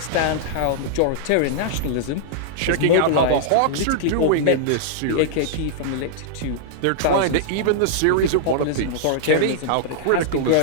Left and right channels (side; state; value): both; different; correlation -0.01